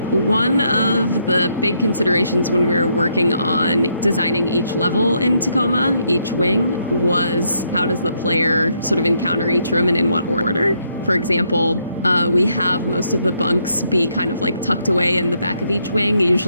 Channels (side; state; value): both; inverted; correlation -0.75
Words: One of the big considerations when we were working on designing each level in Tacoma, each wing, was how does the player sort of encounter each room and in what order? For example, we have most of the bunks be kind of tucked away in the back of each wing,